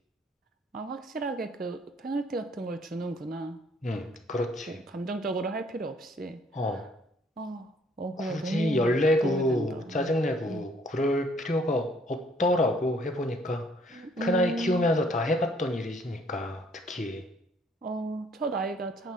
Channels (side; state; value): both; normal; correlation 0.63